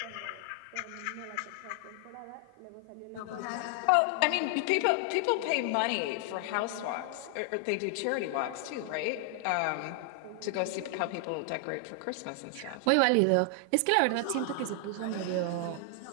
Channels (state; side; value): different; both; correlation 0.00